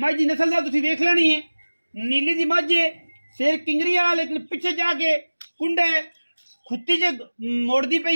दी नस्ल दा तुसीं वेख लेनी है। नीली दी मझ है, सिर किंगरी वाला लेकिन पिछे जाके कुंडा है, खुत्ती च मोड़ती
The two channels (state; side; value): inverted; both; correlation -1.00